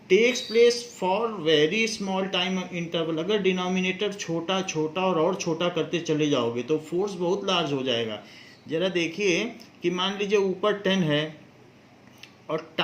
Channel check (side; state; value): both; identical; correlation 1.00